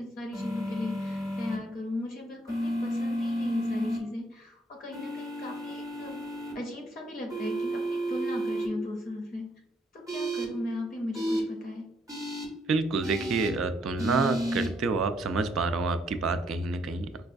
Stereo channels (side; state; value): both; normal; correlation 0.72